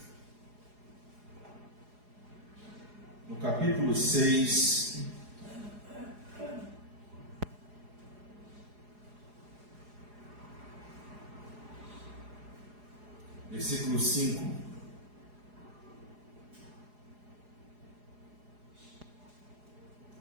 no capítulo 6, versículo 5.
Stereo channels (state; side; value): late; left; 4.8 ms